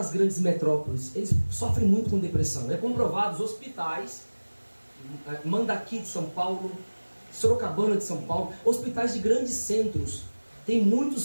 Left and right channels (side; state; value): both; inverted; correlation -1.00